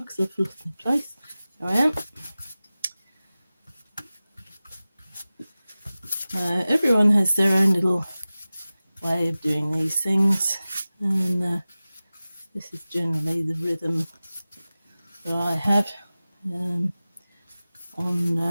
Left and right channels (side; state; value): both; inverted; correlation -0.97